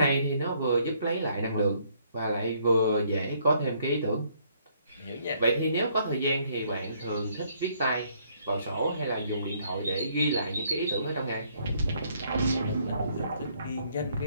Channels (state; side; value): inverted; both; correlation -0.67